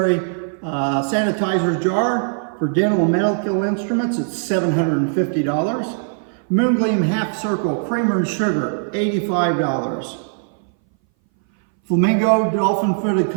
jar for dental and medical instruments. It's $750. Moongleam Half Circle Creamer and Sugar, $85. Flamingo Dolphin Footed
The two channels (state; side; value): silent; left; 60 dB below the other